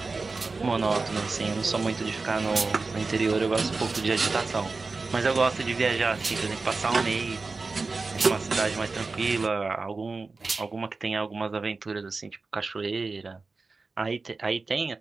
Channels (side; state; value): left; quieter; 4.0 dB